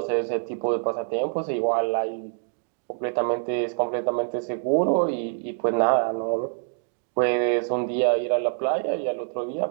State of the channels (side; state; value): left; silent; digital silence